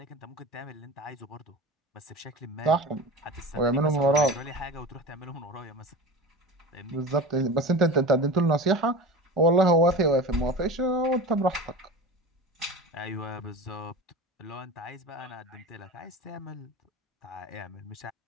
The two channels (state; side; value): normal; both; correlation 0.31